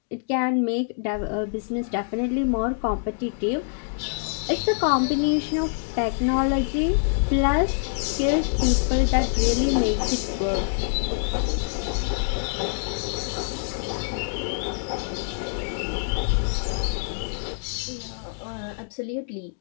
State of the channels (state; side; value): silent; right; digital silence